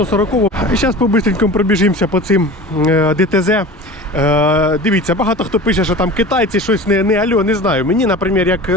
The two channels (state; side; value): normal; both; correlation 0.36